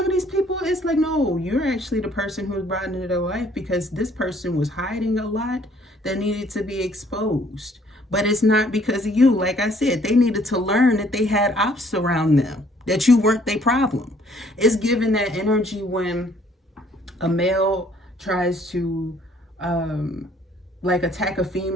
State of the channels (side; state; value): both; normal; correlation 0.61